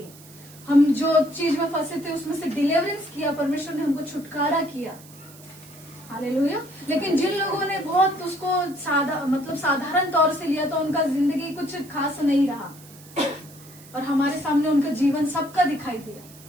हम जो चीज में फंसे थे उसमें से डिलीवरेंस किया, परमेश्वर ने हमको छुटकारा किया। हालेलुया। लेकिन जिन लोगों ने बहुत उसको साधारण तौर से लिया, तो उनका जिंदगी कुछ खास नहीं रहा, और हमारे सामने उनका जीवन सबका दिखाई दिया।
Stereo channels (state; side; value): noise; right; hiss, 21 dB below the sound